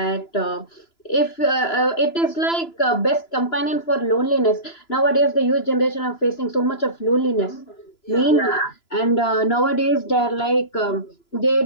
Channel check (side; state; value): right; late; 2.9 ms